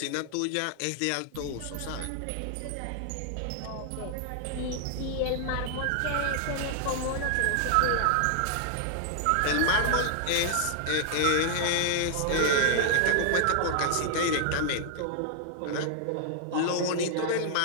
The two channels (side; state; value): both; different; correlation -0.01